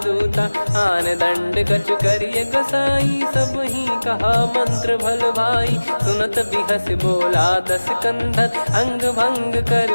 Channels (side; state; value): both; inverted; correlation -1.00